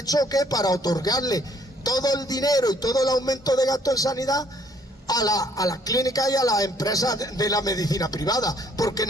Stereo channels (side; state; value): both; normal; correlation 0.63